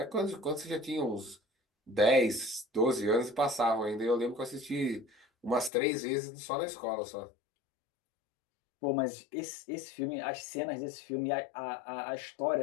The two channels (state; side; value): drops out; right; at 5.7 s